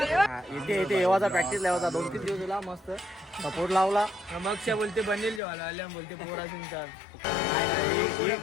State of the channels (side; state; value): right; drops out; at 5.4 s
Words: इथे येवाचा प्रॅक्टिस लावायचा. 2-3 दिवस दिला मस्त सपोर्ट लावला. मग बोलते बनेल जेवायला आल्या बोलते पोरा सिंगचा